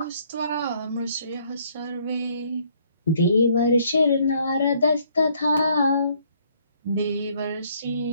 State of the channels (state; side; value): inverted; both; correlation -0.65